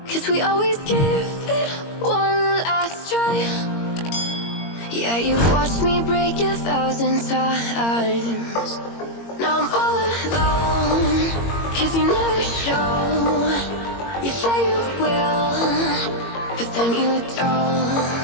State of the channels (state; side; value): late; right; 22 ms